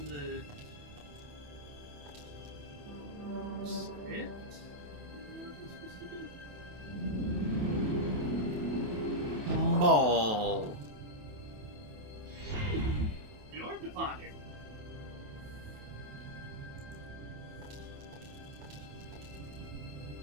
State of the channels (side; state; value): left; late; 28 ms